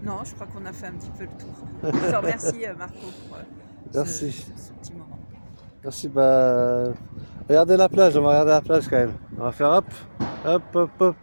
Non, je crois qu'on a fait un petit peu le tour. Je te remercie Marco pour Merci. ce petit moment. Merci, regardez la plage, on va regarder la plage quand même. On va faire hop, hop, hop, hop,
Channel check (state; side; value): inverted; both; correlation -1.00